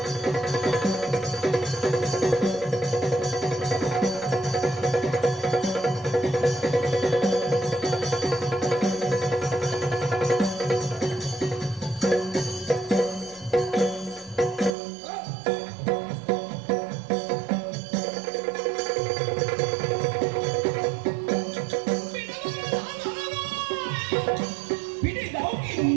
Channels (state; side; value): drops out; left; at 14.7 s